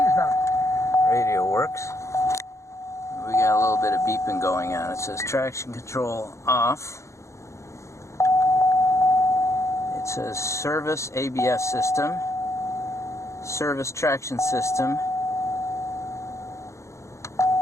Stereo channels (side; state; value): right; late; 0.14 ms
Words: not. Radio works. We got a little bit of beeping going on. It says traction control off. It says service ABS system, service traction system,